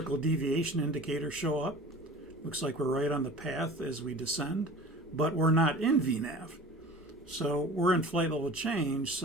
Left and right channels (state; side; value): normal; both; correlation 0.41